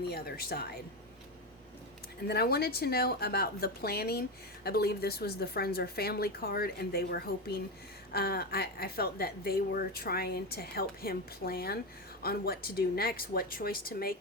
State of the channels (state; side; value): normal; both; correlation 0.15